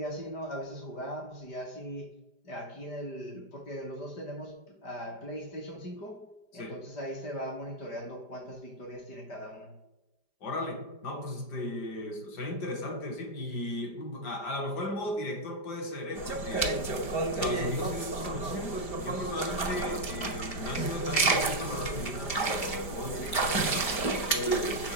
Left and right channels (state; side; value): late; right; 5.0 ms